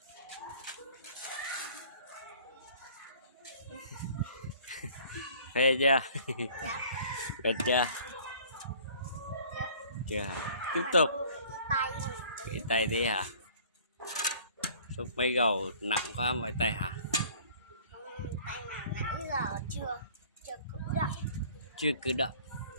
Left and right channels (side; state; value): both; inverted; correlation -0.51